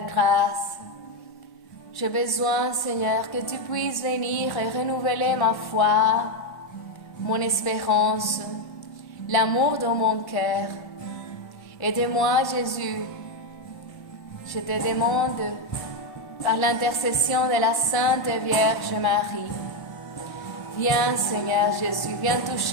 J'ai besoin, Seigneur, que tu puisses venir et renouveler ma foi, mon espérance, l'amour dans mon cœur. Aide-moi, Jésus. Je te demande, par l'intercession de la Sainte Vierge Marie, viens, Seigneur Jésus, viens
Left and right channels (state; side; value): late; right; 1.1 ms